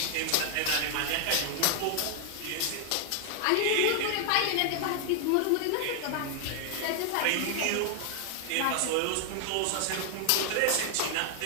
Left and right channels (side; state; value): both; different; correlation 0.00